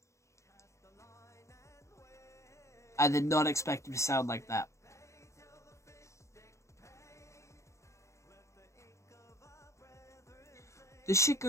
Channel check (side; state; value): right; late; 0.14 ms